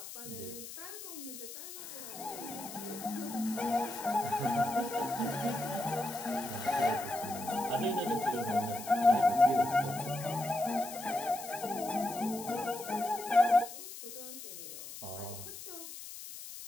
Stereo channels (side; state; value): left; noise; hiss, 11 dB below the sound